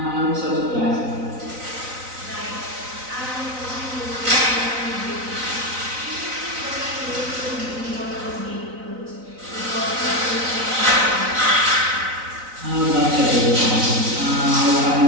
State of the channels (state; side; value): late; left; 3.9 ms